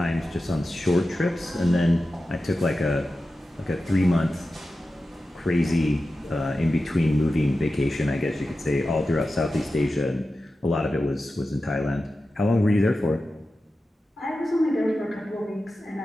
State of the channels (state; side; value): normal; both; correlation 0.93